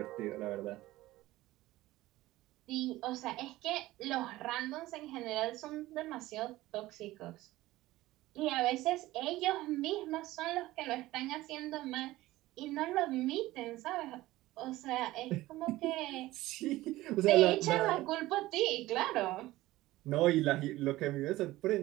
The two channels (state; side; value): quieter; left; 17.3 dB